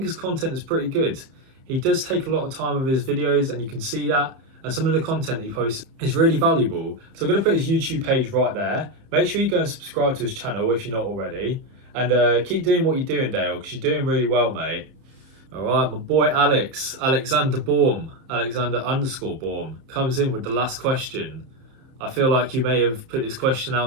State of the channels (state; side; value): late; left; 30 ms